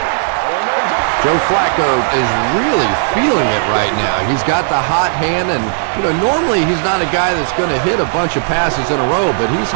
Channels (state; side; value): silent; left; digital silence